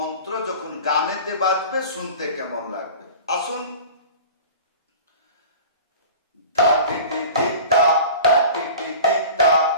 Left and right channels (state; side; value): inverted; both; correlation -0.39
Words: যখন গানেতে বাজবে শুনতে কেমন লাগবে। আসুন।